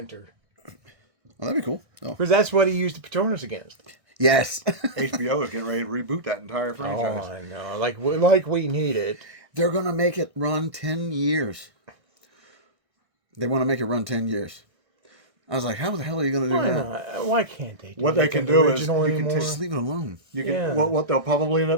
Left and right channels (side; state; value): left; late; 1.6 ms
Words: Well, that'd be cool. Oh. Because that's what he used the Patronus against. Yes. HBO is getting ready to reboot that entire Oh, franchise. I know. Like we need it. They're going to make it run 10 years. They want to make it run 10 years. I was like, how the hell are you going to do Why that? not? Why can't they do What they like can the do is original you can anymore? Just leave it alone. You can Yeah. what they'll probably end